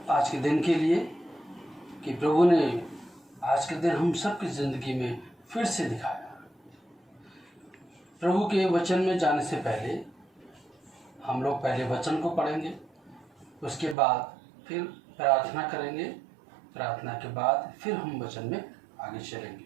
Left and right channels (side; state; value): left; drops out; at 14.0 s